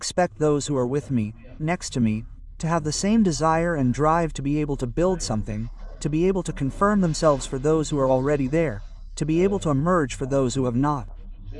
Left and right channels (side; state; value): both; identical; correlation 1.00